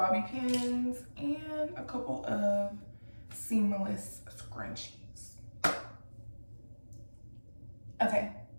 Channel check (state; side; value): inverted; both; correlation -1.00